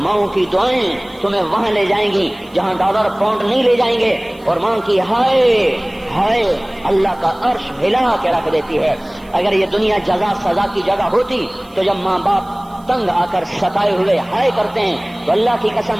کی دعائیں تمہیں وہاں لے جائیں گی جہاں ڈالر پاؤنڈ نہیں لے جائیں گے، اور ماں کی ہائے اللہ کا عرش ہلا کے رکھ دیتی ہے۔ اگر یہ دنیا جزا سزا کی جگہ ہوتی تو جب ماں باپ تنگ آ کر ستائے ہوئے ہائے کرتے ہیں تو اللہ کی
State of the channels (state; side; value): noise; right; hiss, 29 dB below the sound